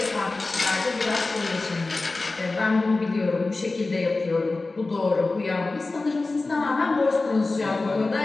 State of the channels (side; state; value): right; quieter; 3.4 dB